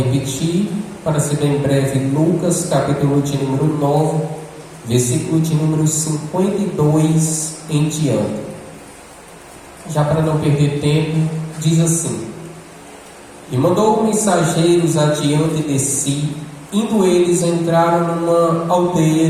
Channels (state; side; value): identical; both; correlation 1.00